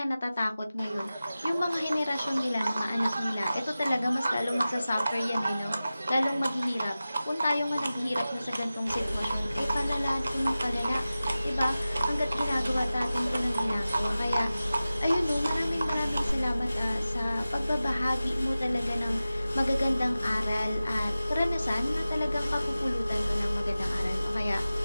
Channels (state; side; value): inverted; both; correlation -0.95